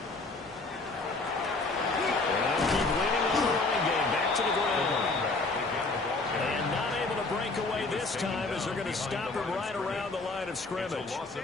And keep leaning on the running game. Back to stop him right around the line of scrimmage. It's a loss of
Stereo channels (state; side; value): quieter; right; 3.5 dB